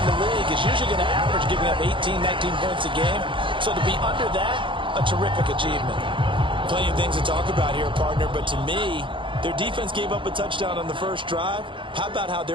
the league is usually going to average giving up 18, 19 points a game. So to be under that, a terrific achievement. Plenty of things to talk about here, partner, but to me, their defense gave up a touchdown on the first drive. How about how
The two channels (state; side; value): late; left; 0.24 ms